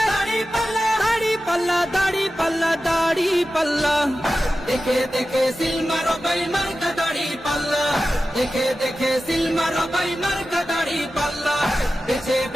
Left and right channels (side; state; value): both; normal; correlation 0.93